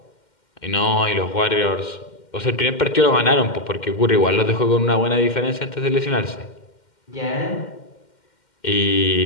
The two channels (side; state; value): right; late; 2.1 ms